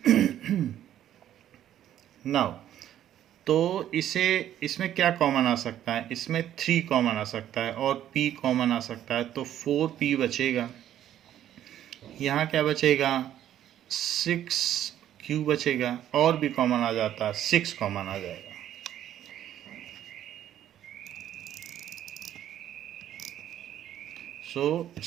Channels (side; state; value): left; quieter; 11.4 dB